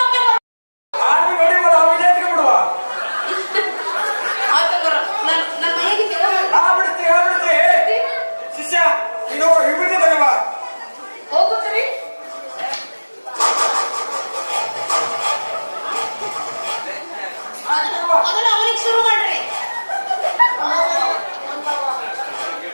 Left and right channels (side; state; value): both; inverted; correlation -1.00